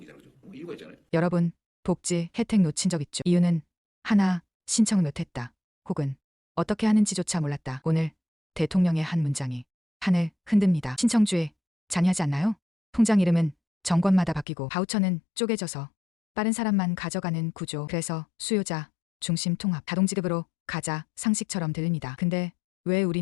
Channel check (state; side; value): drops out; right; at 14.5 s